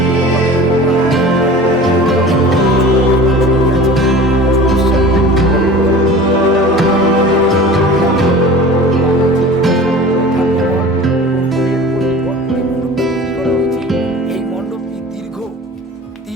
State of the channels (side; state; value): both; normal; correlation 0.40